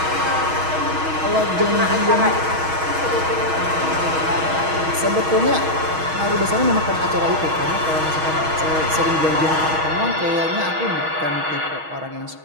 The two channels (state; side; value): late; left; 6.3 ms